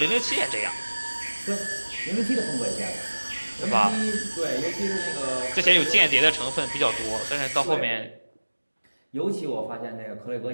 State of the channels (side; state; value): both; inverted; correlation -1.00